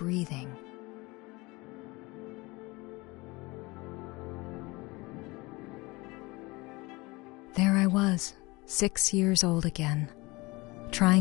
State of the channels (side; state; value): right; quieter; 23.6 dB